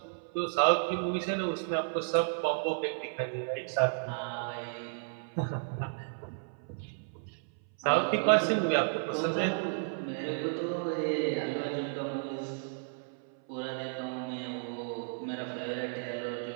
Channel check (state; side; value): silent; left; 56 dB below the other